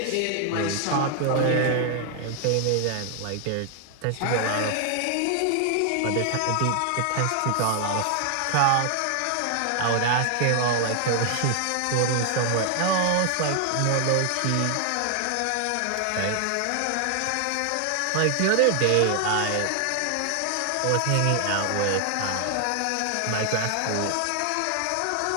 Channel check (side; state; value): both; different; correlation 0.00